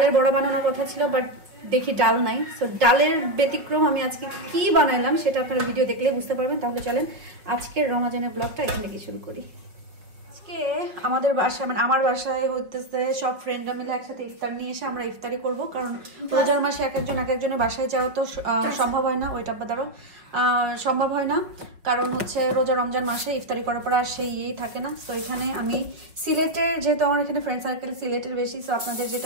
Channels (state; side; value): late; left; 5.4 ms